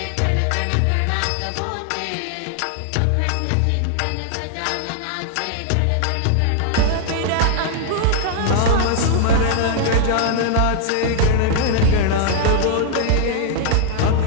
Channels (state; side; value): different; both; correlation 0.00